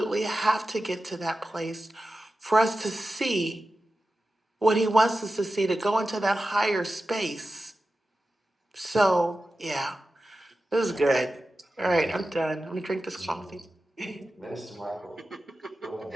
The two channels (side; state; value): both; normal; correlation 0.93